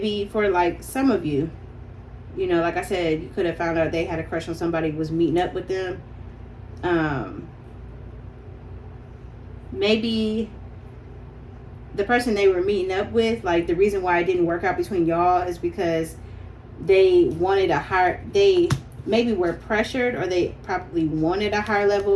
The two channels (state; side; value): identical; both; correlation 1.00